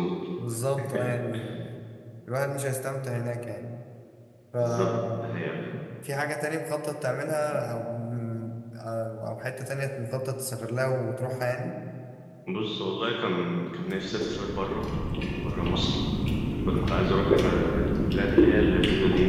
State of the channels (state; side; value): identical; both; correlation 1.00